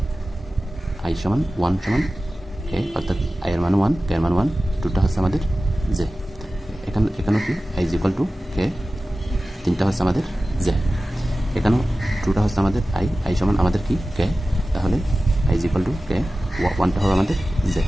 আই সমান 1 সমান কে, অর্থাৎ আই এর মান 1 কে এর মান 1, 2টা হচ্ছে আমাদের জে। এখানেও কি আই ইজ ইকুয়াল টু কে, 3টা হচ্ছে আমাদের জে। এখানেও 2টা হচ্ছে আমাদের আই সমান আমাদের কি কে, তাহলে আই ইজ ইকুয়াল টু কে, 1টা হবে আমাদের জে।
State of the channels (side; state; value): both; normal; correlation 0.95